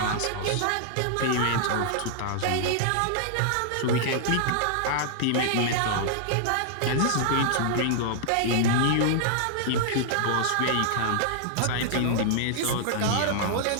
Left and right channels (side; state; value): both; different; correlation -0.01